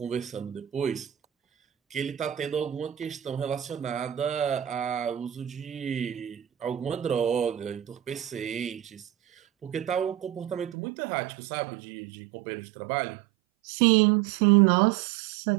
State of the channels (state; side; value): drops out; left; at 10.8 s